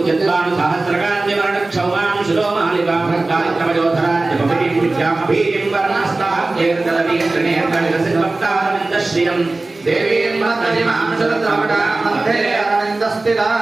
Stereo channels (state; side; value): quieter; left; 3.2 dB